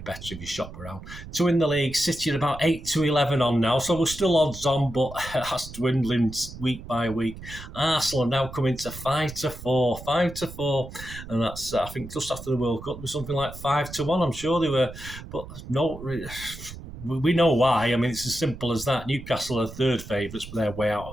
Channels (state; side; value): noise; right; rumble, 13 dB below the sound